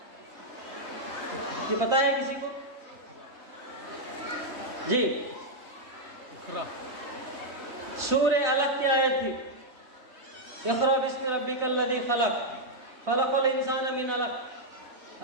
یہ پتہ ہے کسی کو؟ جی، سورہ علق کی آیت تھی، اقرأ بسم ربک الذی خلق خلق الانسان من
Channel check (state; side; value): late; left; 4.0 ms